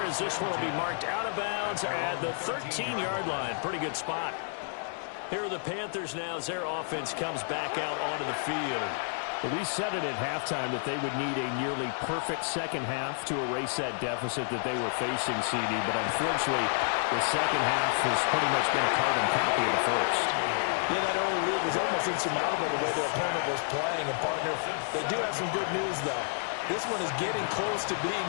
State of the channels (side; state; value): right; silent; digital silence